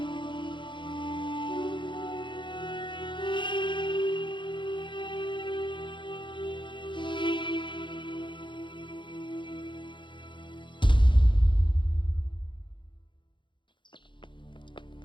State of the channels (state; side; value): late; right; 0.23 ms